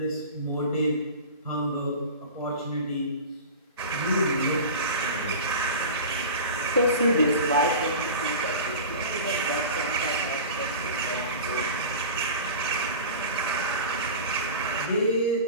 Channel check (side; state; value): both; inverted; correlation -0.33